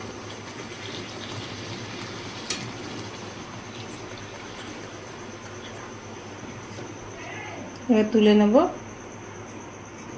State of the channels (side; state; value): both; identical; correlation 1.00